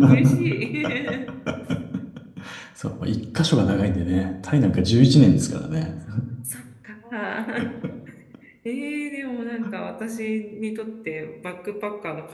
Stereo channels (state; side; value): identical; both; correlation 1.00